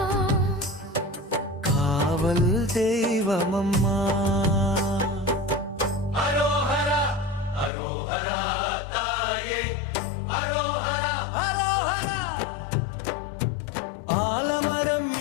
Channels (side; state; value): right; drops out; at 7.7 s